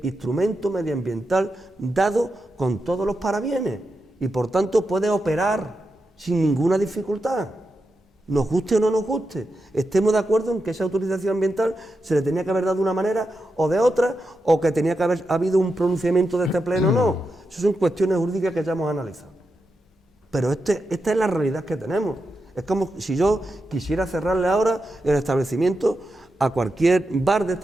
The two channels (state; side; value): normal; both; correlation 0.88